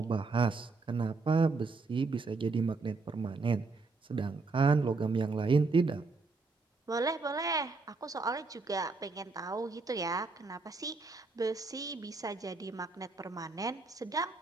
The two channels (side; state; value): left; quieter; 4.0 dB